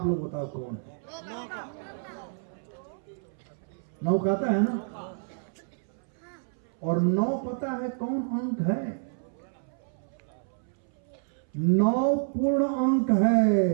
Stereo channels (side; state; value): left; silent; 59 dB below the other